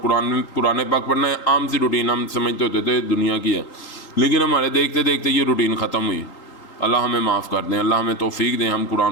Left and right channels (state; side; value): late; right; 3.8 ms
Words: قرآن پاک پڑھنا ہے، عام سی روٹین ہم سمجھتے ہوتے تھے دنیا کی ہے، لیکن ہمارے دیکھتے دیکھتے یہ روٹین ختم ہوئی۔ اللہ ہمیں معاف کر دیں، اللہ ہمیں توفیق دیں، ہم